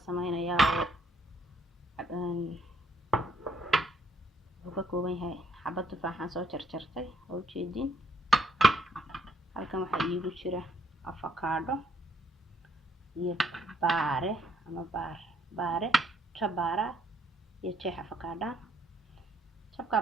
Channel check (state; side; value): normal; both; correlation 0.68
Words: يا وكوكوبين هاي حبة تفاحة سو جرجرتي أو جيدين halkan waxa iigu jira avocado iyo baare ama baare jabara iyo jeex avocado jabka